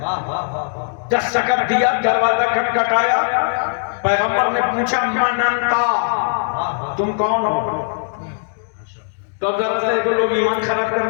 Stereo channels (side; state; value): right; silent; digital silence